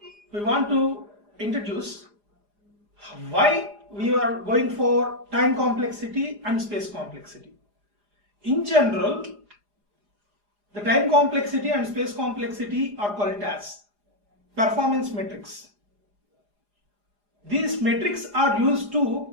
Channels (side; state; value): left; late; 4.9 ms